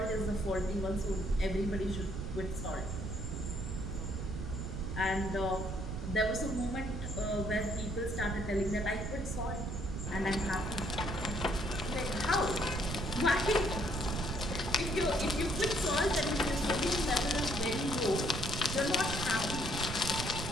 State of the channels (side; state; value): right; noise; rumble, 4 dB below the sound